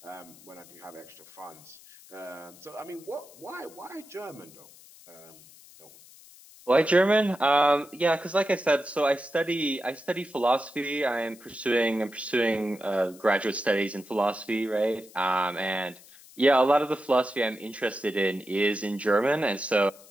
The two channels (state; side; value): noise; left; hiss, 22 dB below the sound